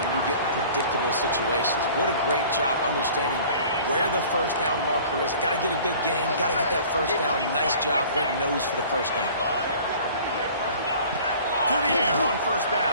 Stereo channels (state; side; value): inverted; both; correlation -0.47